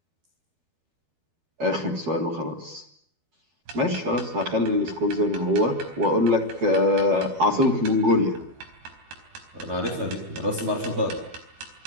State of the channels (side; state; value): left; late; 12 ms